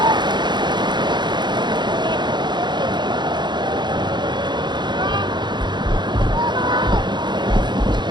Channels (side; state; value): left; late; 0.21 ms